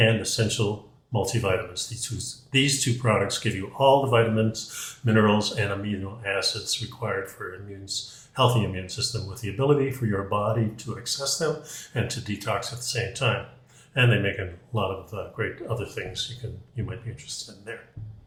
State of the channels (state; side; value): identical; both; correlation 1.00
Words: essential multivitamins. These two products give you all the vitamins, minerals, and amino acids required for healthy immune system, with the ability for your body to access them and to detox at the same time. And they make a lot of great other things you might be interested in there.